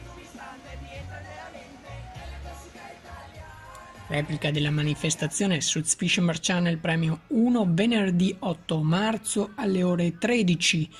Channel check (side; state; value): both; identical; correlation 1.00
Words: Replica della manifestazione su Fisherman Channel Premium 1 venerdì 8 marzo alle ore 13,